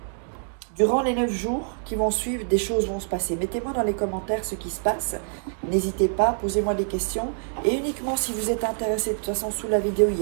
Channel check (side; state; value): left; silent; digital silence